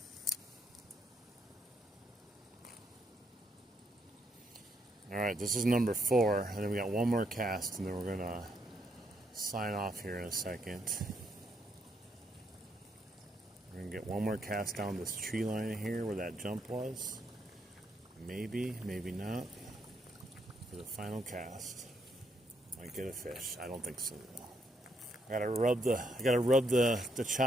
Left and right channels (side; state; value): both; normal; correlation 0.76